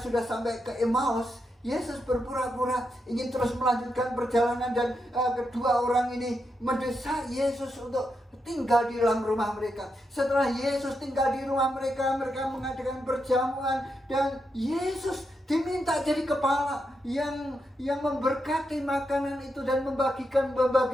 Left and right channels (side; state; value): both; normal; correlation 0.84